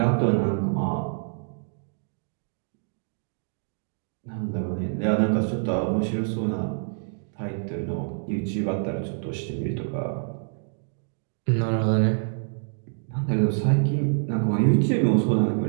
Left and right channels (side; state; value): left; silent; digital silence